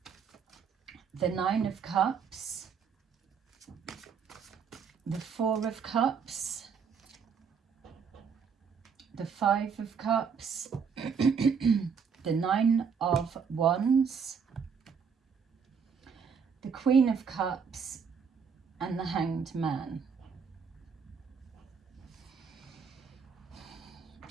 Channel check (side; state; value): left; quieter; 6.3 dB